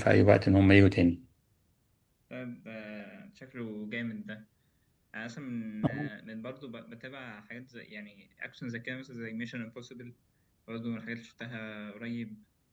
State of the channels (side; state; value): both; identical; correlation 1.00